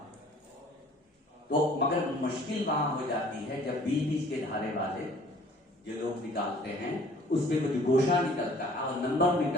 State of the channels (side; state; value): both; normal; correlation 0.54